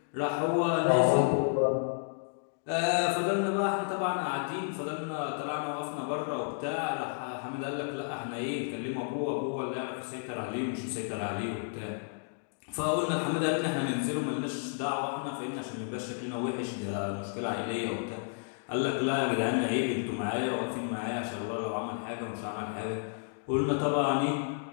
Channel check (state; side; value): silent; right; digital silence